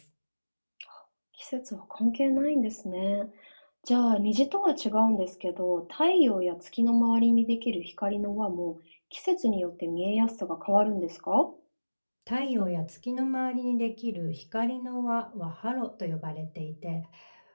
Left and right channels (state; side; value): inverted; both; correlation -1.00